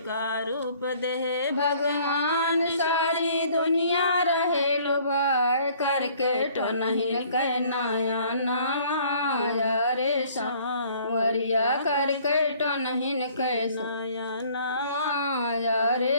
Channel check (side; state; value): both; inverted; correlation -0.57